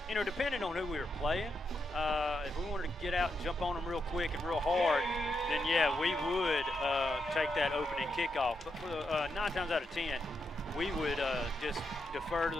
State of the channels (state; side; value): normal; both; correlation 0.83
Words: Depending on who we were playing, if we wanted to get out and jump on them real quick and real hard, then, yeah, we would take that opening kickoff. But for the 9 times out of 10, we would just defer to